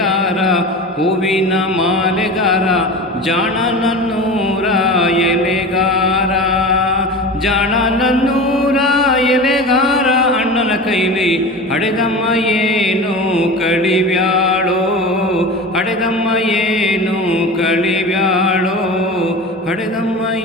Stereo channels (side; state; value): both; normal; correlation 0.31